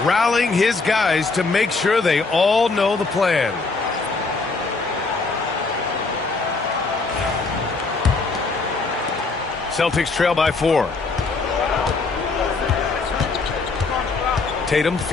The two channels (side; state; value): right; quieter; 4.0 dB